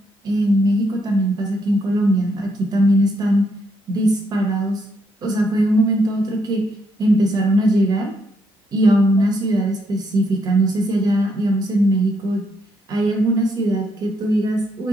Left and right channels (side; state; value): both; normal; correlation 0.75